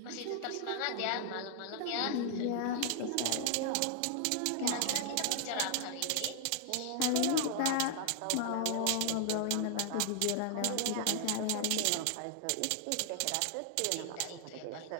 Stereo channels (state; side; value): different; both; correlation 0.00